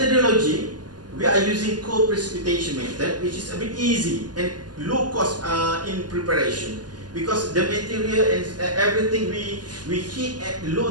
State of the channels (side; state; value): left; late; 0.70 ms